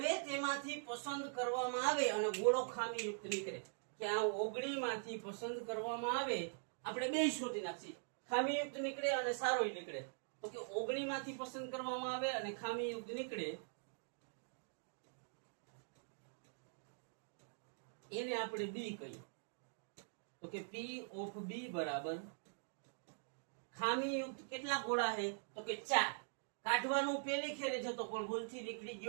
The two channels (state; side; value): silent; left; digital silence